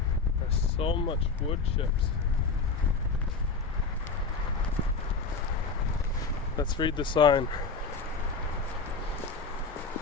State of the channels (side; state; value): right; quieter; 4.5 dB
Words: There's so much wood chips. Let's read the sign.